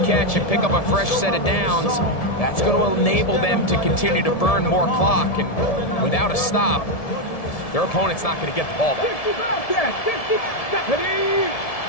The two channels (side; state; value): right; late; 1.7 ms